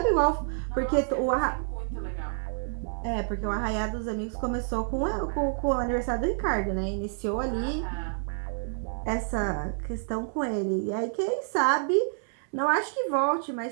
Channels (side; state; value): left; silent; 59 dB below the other